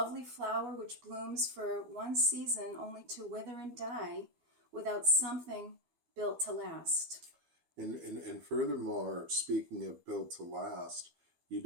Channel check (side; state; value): left; late; 12 ms